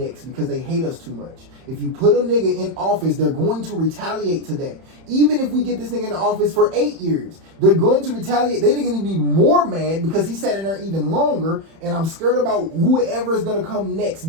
because they hate us too much. If you put a nigga in office, they're going to retaliate to that. Even if we get this nigga in office for 8 years, they're going to retaliate. They're gonna be more mad because he sat in there even longer. And I'm scared about whoever's gonna come next,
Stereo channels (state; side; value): late; left; 31 ms